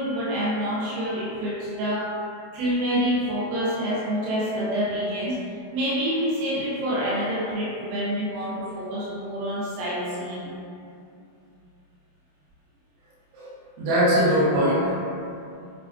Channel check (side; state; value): left; late; 28 ms